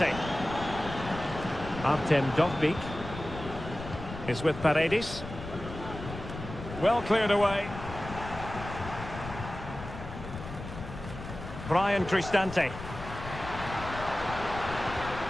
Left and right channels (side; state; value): left; noise; rumble, 10 dB below the sound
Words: Artem Dovbyk is with Paredes. Well cleared away. Brian Cristante.